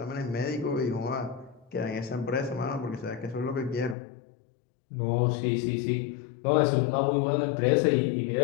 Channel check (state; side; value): drops out; right; at 4.0 s